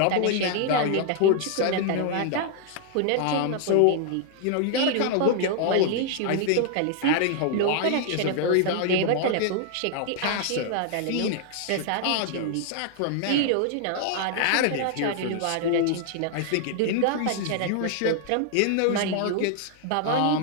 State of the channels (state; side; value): different; both; correlation 0.00